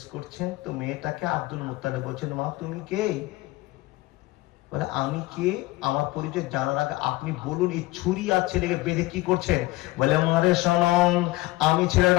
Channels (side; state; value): right; quieter; 19.7 dB